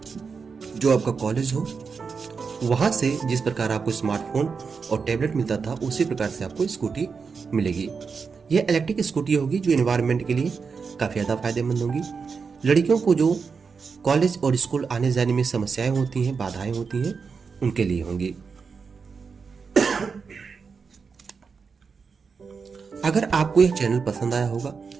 जो आपका कॉलेज हो, वहां से जिस प्रकार आपको स्मार्टफोन और टैबलेट मिलता था उसी प्रकार से आपको स्कूटी मिलेगी। यह इलेक्ट्रिक स्कूटी होगी जो एनवायरनमेंट के लिए काफी ज्यादा फायदेमंद होगी। लड़कियों को जो कॉलेज और स्कूल आने जाने में समस्याएं होती हैं, बाधाएं होती हैं, उनके लिए होंगी। अगर आपको यह चैनल पसंद आया होगा,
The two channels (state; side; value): quieter; left; 5.4 dB